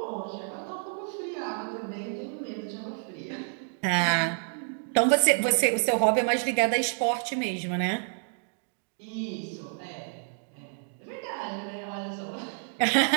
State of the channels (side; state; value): left; silent; 59 dB below the other